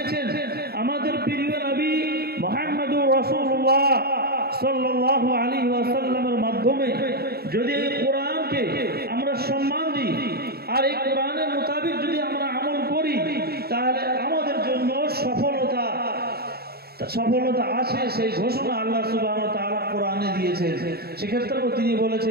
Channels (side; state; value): left; late; 0.46 ms